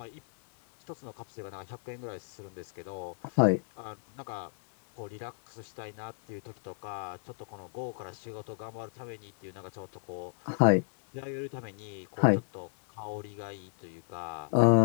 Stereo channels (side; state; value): right; silent; digital silence